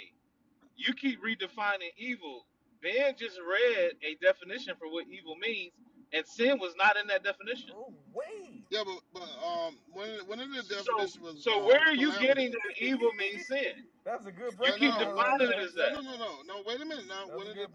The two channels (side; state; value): both; identical; correlation 1.00